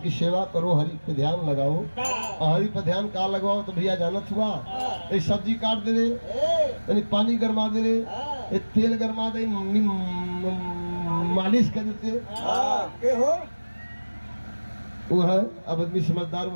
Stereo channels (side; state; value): both; inverted; correlation -1.00